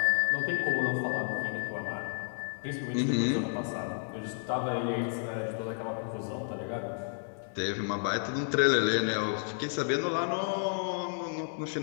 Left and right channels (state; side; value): silent; right; 57 dB below the other